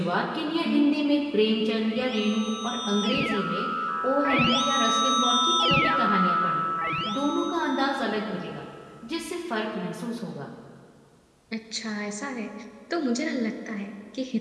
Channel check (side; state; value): both; identical; correlation 1.00